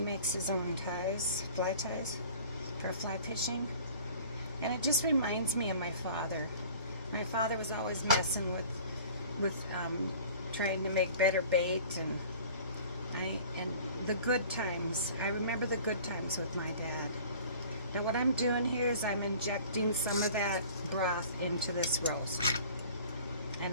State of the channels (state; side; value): inverted; both; correlation -0.46